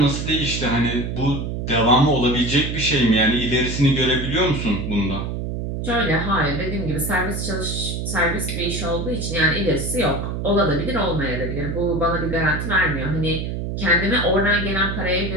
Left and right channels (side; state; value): right; noise; hum, 4 dB below the sound